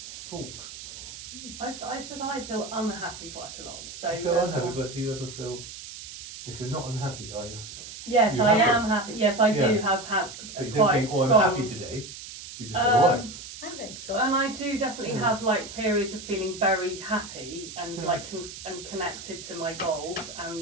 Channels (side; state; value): right; noise; hiss, 12 dB below the sound